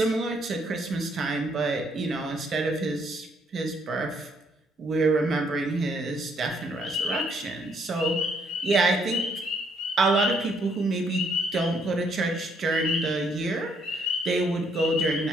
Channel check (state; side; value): normal; both; correlation 0.69